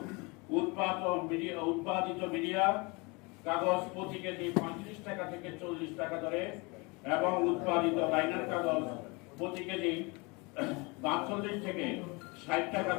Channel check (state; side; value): quieter; right; 27.8 dB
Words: উৎপাদিত মিডিয়া কাগজ প্রতি কেজি 35 টাকা থেকে 40 টাকা দরে এবং উৎপাদিত লাইনার কাগজ প্রতি কেজি 42 থেকে 60 টাকা